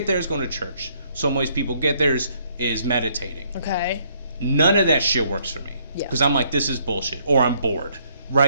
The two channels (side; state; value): both; inverted; correlation -0.68